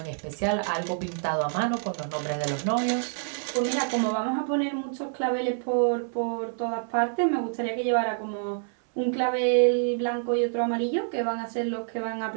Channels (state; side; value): silent; left; 58 dB below the other